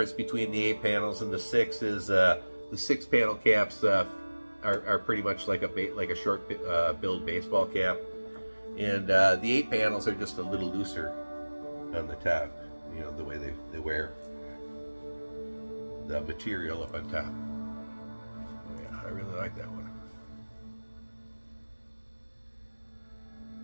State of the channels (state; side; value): inverted; both; correlation -1.00